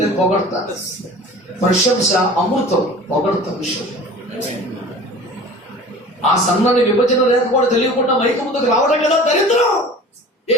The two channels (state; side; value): normal; both; correlation 0.41